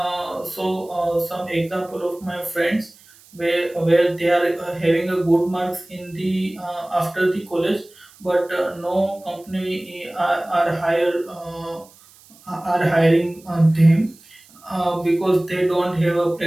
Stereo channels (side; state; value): right; noise; hiss, 26 dB below the sound